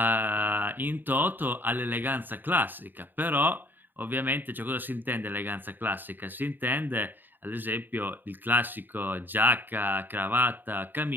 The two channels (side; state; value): left; late; 0.091 ms